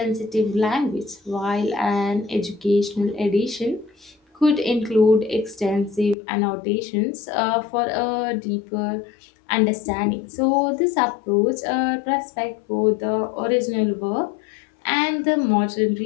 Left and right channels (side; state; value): right; drops out; at 6.2 s